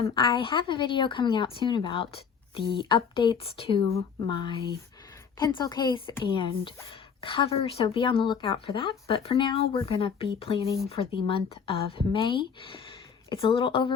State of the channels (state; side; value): quieter; right; 6.6 dB